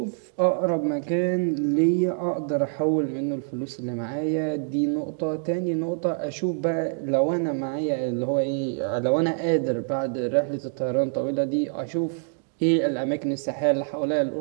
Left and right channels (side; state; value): left; silent; 61 dB below the other